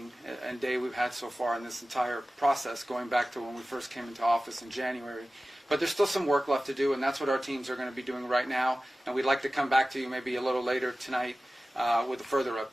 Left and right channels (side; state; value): both; normal; correlation 0.96